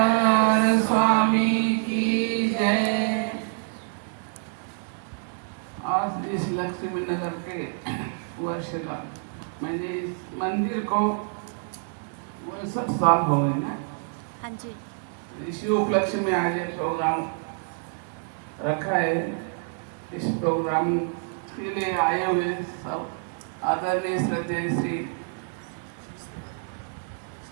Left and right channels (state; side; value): silent; left; 58 dB below the other